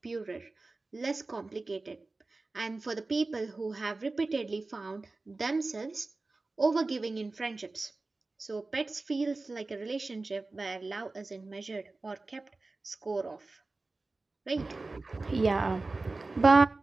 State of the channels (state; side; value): quieter; left; 3.4 dB